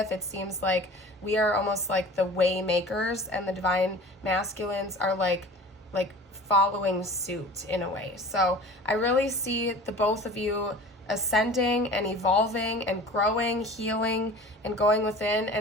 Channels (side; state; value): both; normal; correlation 0.41